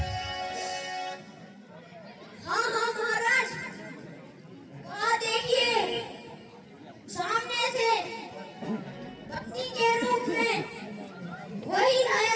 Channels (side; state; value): both; identical; correlation 1.00